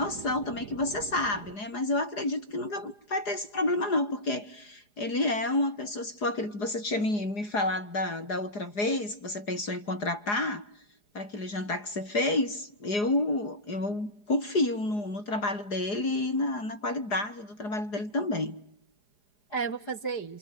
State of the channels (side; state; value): right; late; 4.8 ms